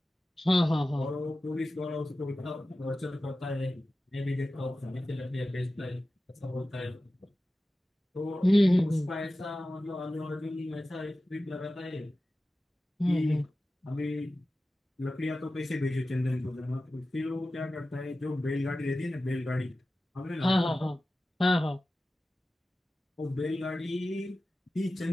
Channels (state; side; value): normal; both; correlation 0.95